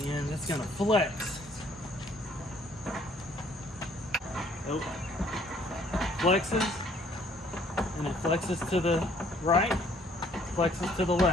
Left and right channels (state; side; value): normal; both; correlation 0.61